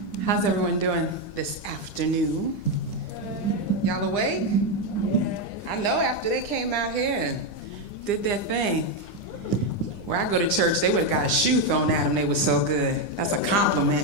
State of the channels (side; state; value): right; late; 9.9 ms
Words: How's everyone doing this afternoon? Y'all awake? I know after they came out here and did their thing. Where I go to church, they would have got a shoe thrown at them. They were so good. That's a